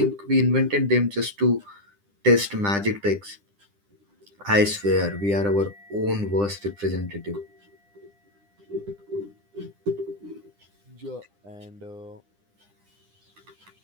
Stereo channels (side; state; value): left; late; 9.9 ms